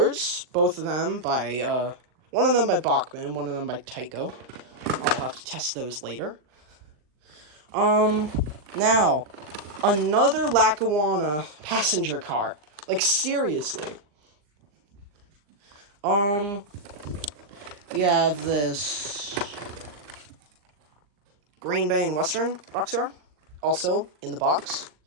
both of them by, one of them by Bachmann, one of them by Tyco. I'll have to test those later. Now, another Lackawanna passenger car. Like, seriously. We have this Green Bay and Western boxcar, also in the box.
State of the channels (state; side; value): late; left; 39 ms